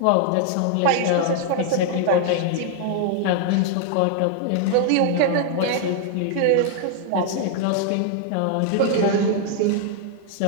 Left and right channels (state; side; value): different; both; correlation 0.00